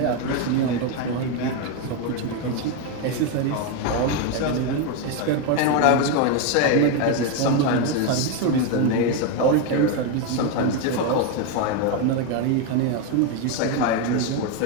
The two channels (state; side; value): different; both; correlation 0.02